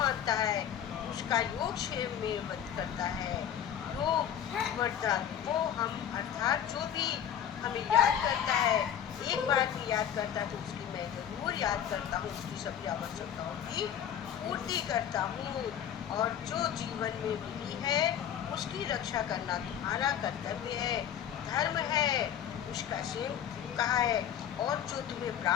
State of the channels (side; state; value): right; quieter; 9.6 dB